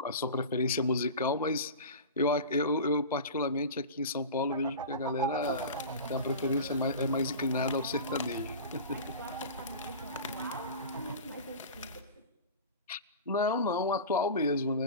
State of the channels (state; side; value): inverted; both; correlation -0.32